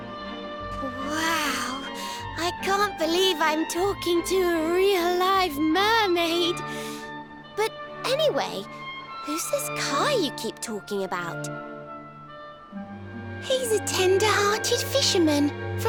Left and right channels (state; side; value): identical; both; correlation 1.00